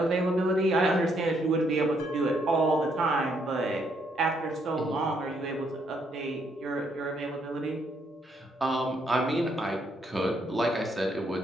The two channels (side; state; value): both; normal; correlation 0.72